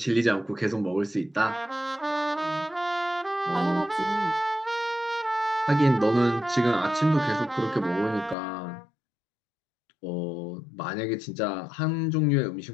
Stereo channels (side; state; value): right; drops out; at 8.3 s